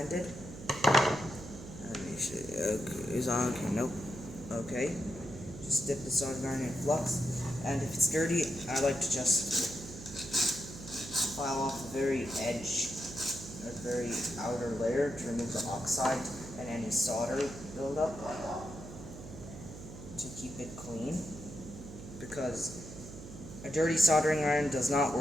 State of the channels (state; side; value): noise; right; hum, 13 dB below the sound